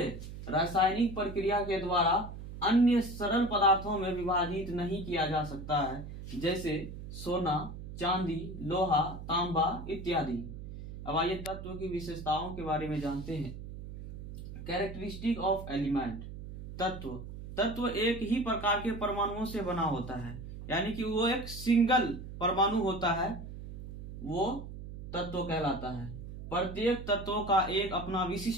रासायनिक प्रक्रिया के द्वारा अन्य सरल पदार्थों में विभाजित नहीं किया जा सकता है, जैसे सोना, चांदी, लोहा, तांबा इत्यादि। अब आइए तत्व की विशेषताओं के बारे में जानते हैं। Characteristic of element. तत्व एक ही प्रकार के परमाणुओं से बना होता है, यानी कि वो एक सिंगल परमाणु होता है, वो तत्व कहलाता है। प्रत्येक तत्व का एक अपना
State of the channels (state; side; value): noise; right; hum, 10 dB below the sound